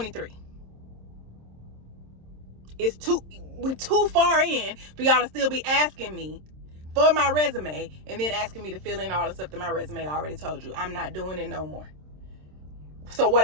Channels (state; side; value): late; left; 27 ms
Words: We're too far in for y'all to still be asking me for my resume and then asking me to fill in all the stuff that my resume already told you. I'm not doing it no more. So